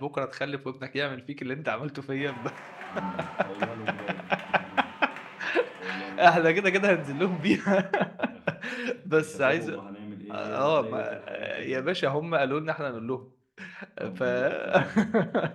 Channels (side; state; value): both; identical; correlation 1.00